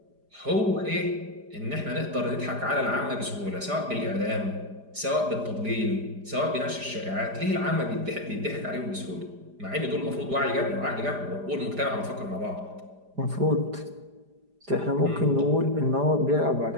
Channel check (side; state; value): left; late; 4.9 ms